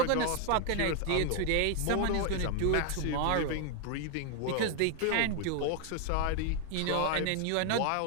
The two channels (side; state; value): both; different; correlation 0.00